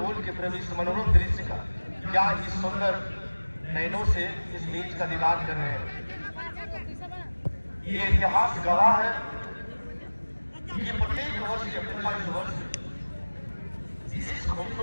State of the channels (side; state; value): both; inverted; correlation -1.00